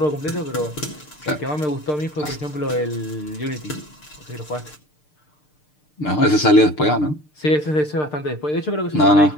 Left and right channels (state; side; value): late; right; 6.6 ms